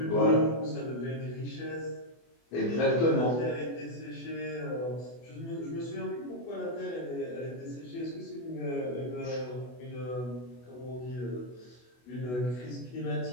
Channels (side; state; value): right; late; 24 ms